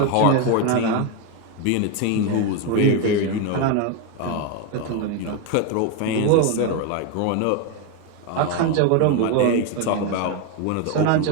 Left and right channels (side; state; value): both; different; correlation 0.02